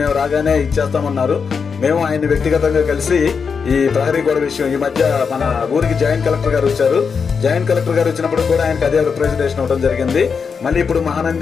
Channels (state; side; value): quieter; right; 5.8 dB